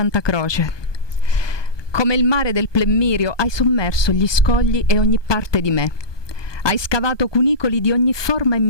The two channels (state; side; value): late; right; 1.2 ms